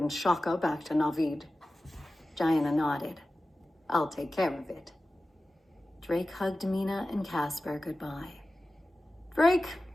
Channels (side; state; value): both; normal; correlation 0.95